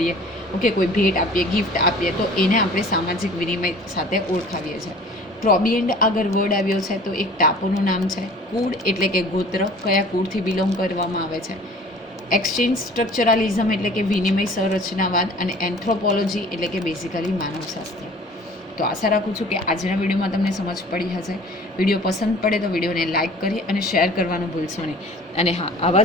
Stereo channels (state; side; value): normal; both; correlation 0.47